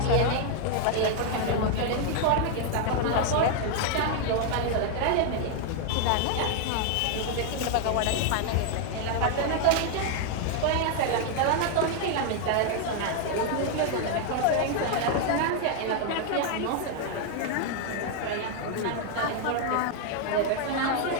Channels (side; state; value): both; different; correlation 0.00